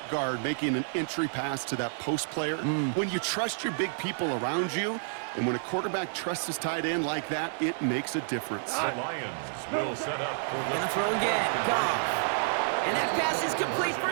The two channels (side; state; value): left; silent; 58 dB below the other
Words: guard making an entry pass to that post player. When you trust your big people around you, and when a quarterback trusts his tight end like that, it makes a difference. The Lions will set up for the Gonna throw again. Goff. And that pass is complete